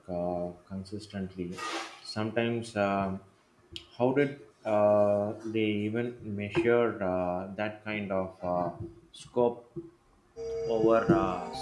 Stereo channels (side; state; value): both; identical; correlation 1.00